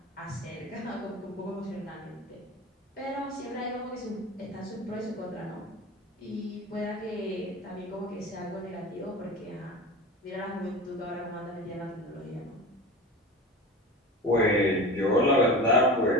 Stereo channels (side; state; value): both; normal; correlation 0.32